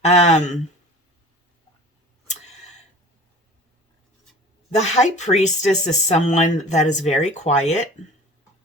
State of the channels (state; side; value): normal; both; correlation 0.42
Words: The High Priestess is someone that is very quiet.